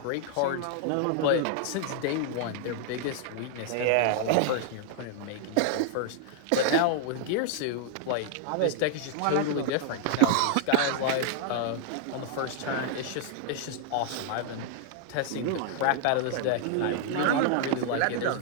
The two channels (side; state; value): both; different; correlation 0.00